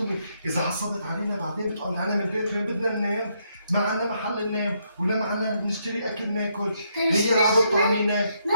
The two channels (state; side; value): inverted; both; correlation -0.76